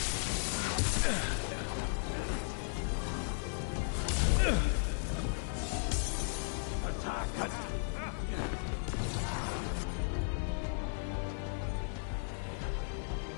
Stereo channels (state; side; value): silent; right; 54 dB below the other